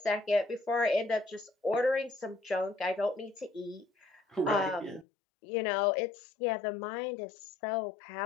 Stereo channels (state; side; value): drops out; right; at 5.1 s